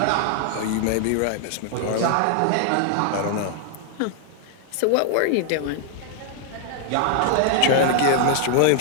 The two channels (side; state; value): both; different; correlation -0.01